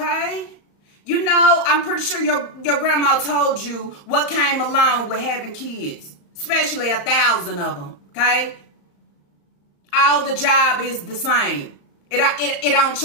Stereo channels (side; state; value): right; late; 35 ms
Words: You know, I'm pretty sure your grandma told you what came along with having kids, especially 1,000 of them, okay? All the job is the same. It don't